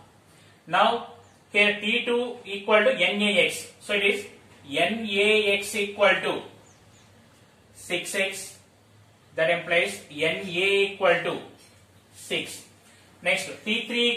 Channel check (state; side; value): identical; both; correlation 1.00